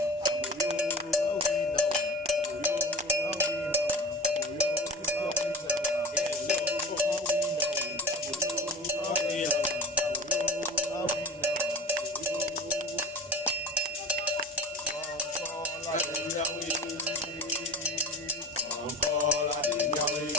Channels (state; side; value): normal; both; correlation 0.34